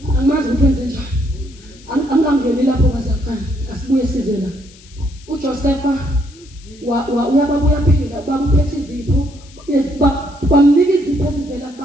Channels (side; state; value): left; noise; hiss, 24 dB below the sound